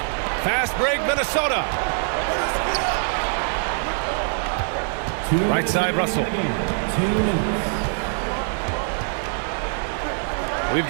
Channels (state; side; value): silent; left; 63 dB below the other